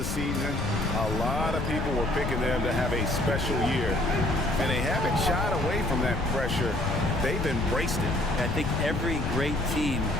season. A lot of people were picking them to have a special year. And they haven't shied away from that pressure. They've embraced it. I think every great team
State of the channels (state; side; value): noise; left; rumble, 2 dB below the sound